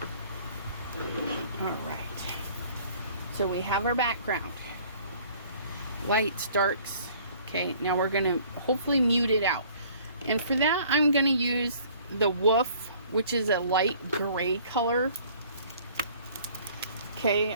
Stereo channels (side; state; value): both; inverted; correlation -0.54